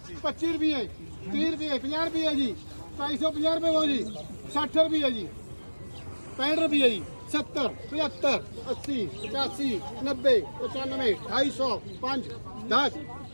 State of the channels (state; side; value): inverted; both; correlation -1.00